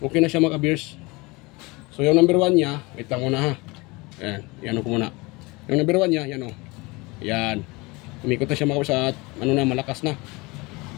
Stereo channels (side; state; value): right; quieter; 24.5 dB